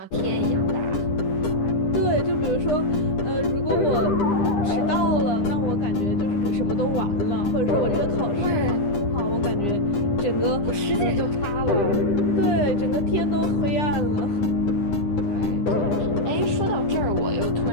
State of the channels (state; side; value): late; right; 9.9 ms